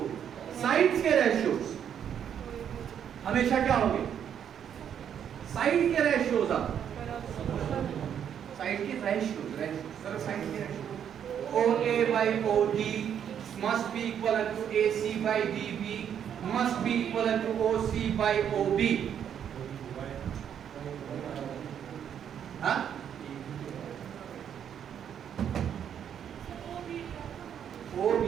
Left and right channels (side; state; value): left; quieter; 8.8 dB